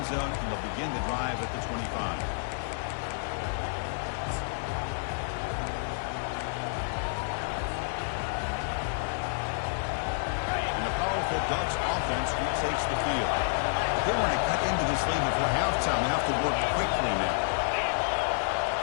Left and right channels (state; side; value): silent; right; digital silence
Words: zone, and they'll begin the drive at the 25. Ducks offense retakes the field. They want to cut into this lead before halftime. They have to work quickly now.